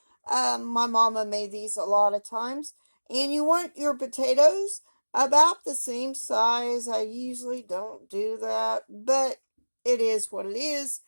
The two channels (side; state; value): both; inverted; correlation -1.00